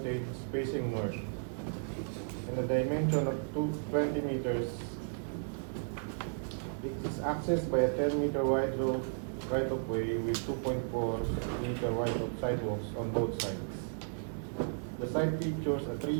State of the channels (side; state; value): left; silent; 55 dB below the other